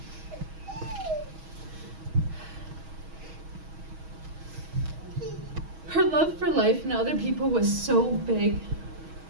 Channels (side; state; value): left; late; 6.3 ms